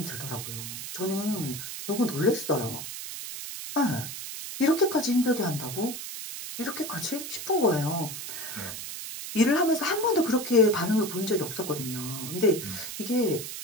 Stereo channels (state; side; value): noise; right; hiss, 8 dB below the sound